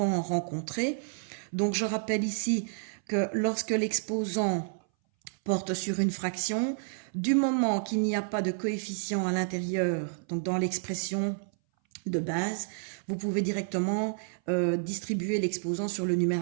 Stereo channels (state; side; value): silent; left; 58 dB below the other